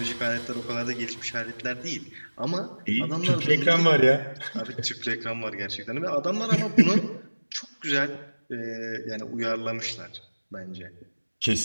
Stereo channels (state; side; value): inverted; both; correlation -1.00